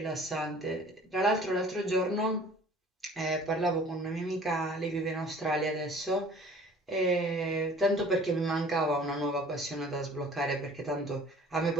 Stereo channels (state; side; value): normal; both; correlation 0.49